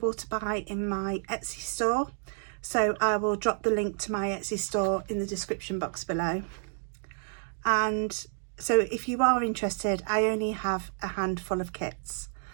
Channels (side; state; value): left; silent; digital silence